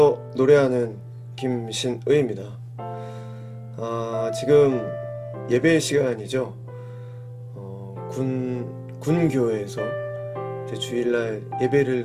노래하는 김신의입니다. 지금 예배 시간이죠. 군교회에서 이제 주일날 예배를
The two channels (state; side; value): identical; both; correlation 1.00